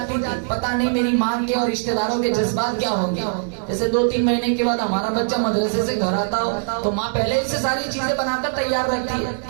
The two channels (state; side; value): silent; left; digital silence